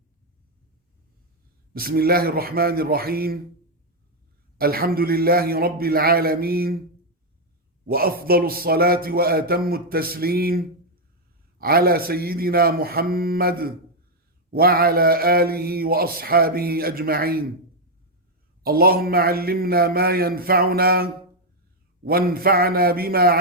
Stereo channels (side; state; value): both; normal; correlation 0.00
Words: بسم الله الرحمن الرحيم. الحمد لله رب العالمين، وأفضل الصلاة وأتم التسليم على سيدنا محمد وعلى آله وأصحابه أجمعين. اللهم علمنا ما ينفعنا وانفعنا بما